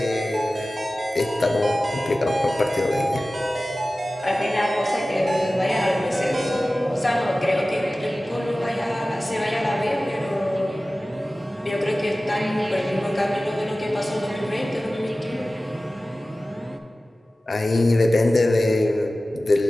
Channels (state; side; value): normal; both; correlation 0.96